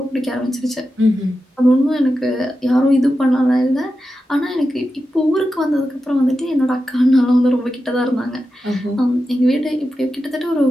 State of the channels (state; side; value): normal; both; correlation 0.91